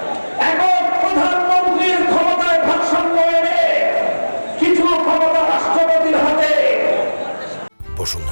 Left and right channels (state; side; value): inverted; both; correlation -1.00